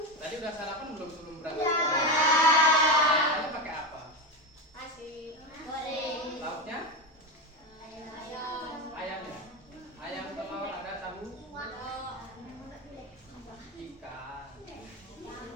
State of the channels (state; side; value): normal; both; correlation 0.16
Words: Tadi udah sarapan belum sebelum berangkat? Ya. Sarapannya pakai apa? Nasi goreng. Lauknya? Ayam. Ayamnya? Ayam, telur, ada tahu? Ikan.